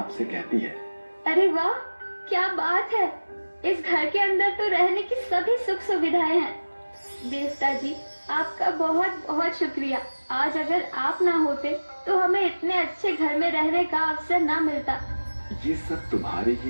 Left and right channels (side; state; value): both; inverted; correlation -1.00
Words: से कहती है, अरे वाह, क्या बात है! इस घर के अंदर तो रहने की सभी सुख सुविधाएं हैं। देवता जी, आपका बहुत बहुत शुक्रिया। आज अगर आप ना होते तो हमें इतने अच्छे घर में रहने का अवसर ना मिलता। ये सब तुम्हारे